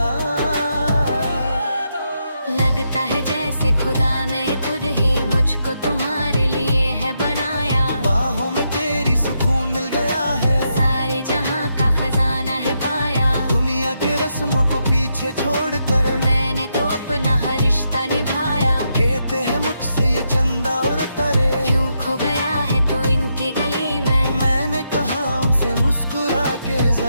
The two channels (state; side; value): inverted; both; correlation -0.81